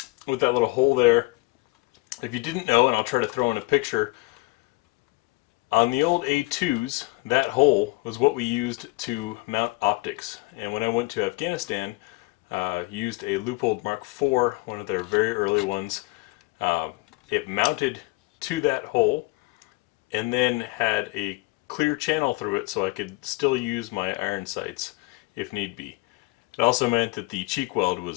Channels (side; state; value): right; quieter; 23.8 dB